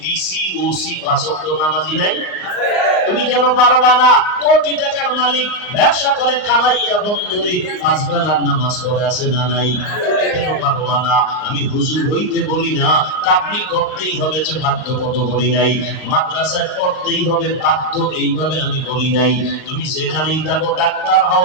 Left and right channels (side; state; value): right; late; 39 ms